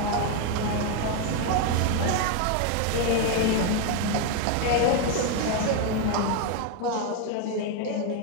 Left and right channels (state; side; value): different; both; correlation 0.01